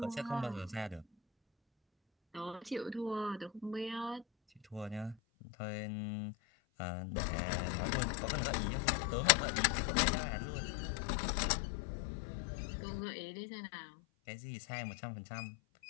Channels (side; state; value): right; drops out; at 5.2 s